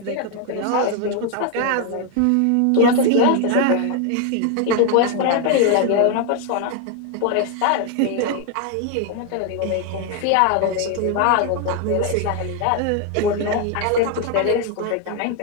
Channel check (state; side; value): different; both; correlation 0.01